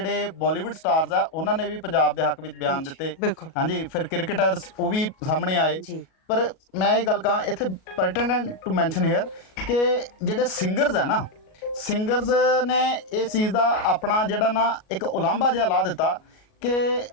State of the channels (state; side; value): late; right; 37 ms